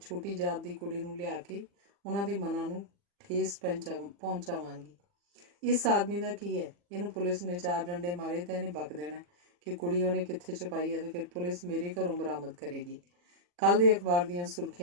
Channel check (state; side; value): late; left; 40 ms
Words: ਛੋਟੀ ਜਾਤ ਦੀ ਕੁੜੀ ਨੂੰ ਲਿਆ ਕੇ ਉਹਨਾਂ ਦੇ ਮਨਾਂ ਨੂੰ ਠੇਸ ਪਹੁੰਚਾਵਾਂਗੀ। ਇਸ ਆਦਮੀ ਦਾ ਕੀ ਹੈ? ਇਹਨੂੰ ਪੁਲਿਸ ਨੇ 4 ਡੰਡੇ ਮਾਰੇ ਤਾਂ ਇਹਨੇ ਬਕ ਦੇਣਾ ਕਿ ਕੁੜੀ ਉਹਨੇ ਕਿੱਥੇ ਛੁਪਾਈ ਹੈ ਤੇ ਫਿਰ ਪੁਲਿਸ ਮੇਰੇ ਘਰੋਂ ਬਰਾਮਦ ਕਰੇਗੀ। ਕੱਲ੍ਹ ਦੇ ਅਖਬਾਰ ਦੀਆਂ